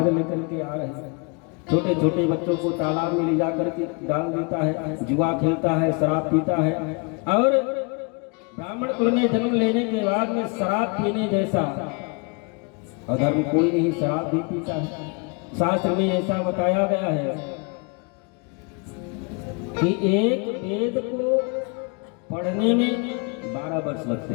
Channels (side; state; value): right; quieter; 33.8 dB